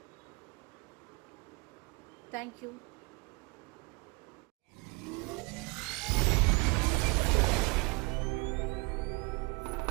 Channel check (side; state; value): left; quieter; 29.4 dB